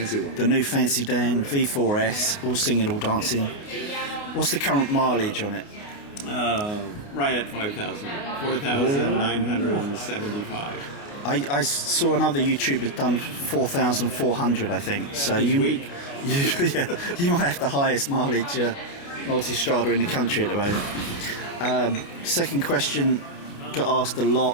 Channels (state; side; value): late; right; 29 ms